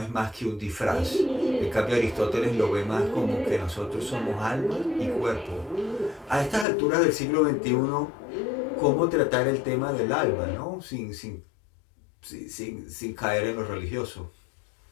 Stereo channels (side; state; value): right; drops out; at 6.7 s